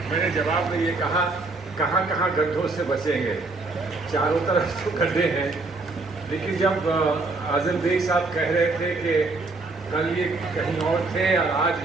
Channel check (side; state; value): left; quieter; 3.4 dB